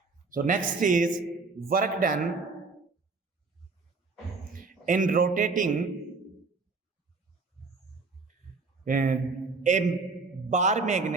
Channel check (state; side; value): quieter; left; 4.1 dB